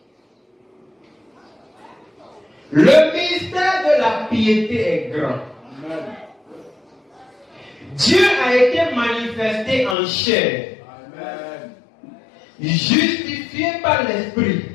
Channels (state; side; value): drops out; right; at 10.0 s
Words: le mystère de la piété est grand. Amen. Dieu a été manifesté en chair. Amen. Justifié par l'Esprit.